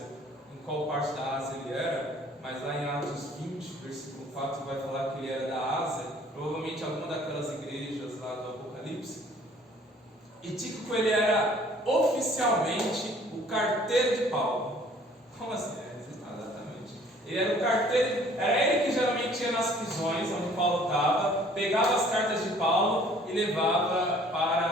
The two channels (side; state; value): both; normal; correlation 0.55